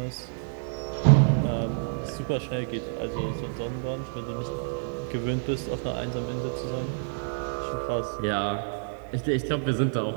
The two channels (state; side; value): silent; left; 59 dB below the other